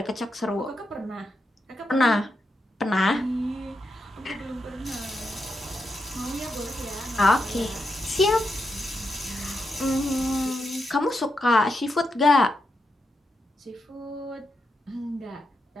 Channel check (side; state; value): both; normal; correlation 0.84